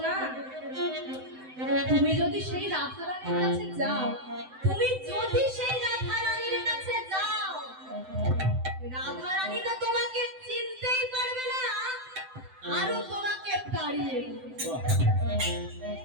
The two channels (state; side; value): late; left; 7.8 ms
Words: না, তুমি যদি সেই রাধারানীর কাছে যাও, তুমি যদি সেই রাধারানীর কাছে যাও, রাধারানী তো তোমাকে চিনতেই পারবে না, আরো তোমাকে তাড়িয়ে দেবে।